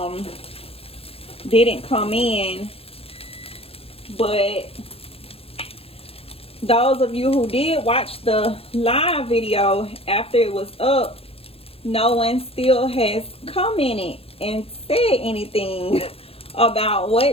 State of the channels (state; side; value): late; right; 0.28 ms